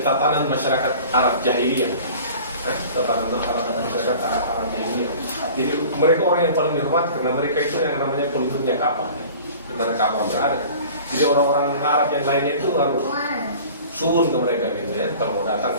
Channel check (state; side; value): inverted; both; correlation -0.43